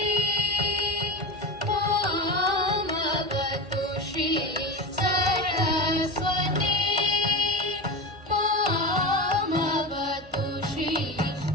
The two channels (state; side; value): normal; both; correlation 0.22